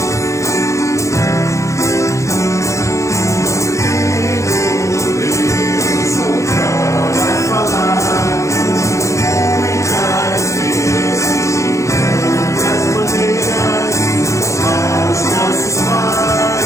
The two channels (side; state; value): right; late; 0.15 ms